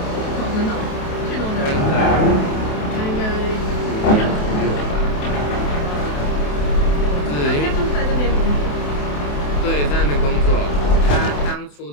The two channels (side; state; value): right; late; 28 ms